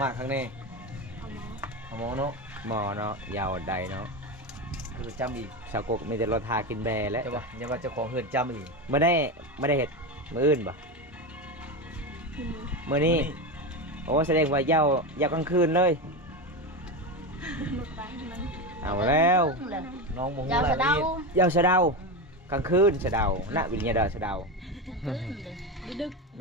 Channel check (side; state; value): both; normal; correlation 0.17